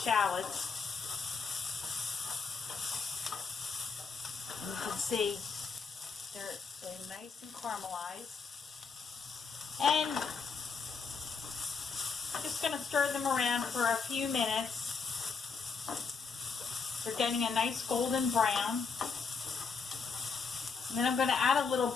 And you can see they're nice and caramelized. And I'm just going to stir them around for a few minutes. They're getting a nice golden brown. And then I'm going to add a little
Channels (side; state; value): right; quieter; 5.1 dB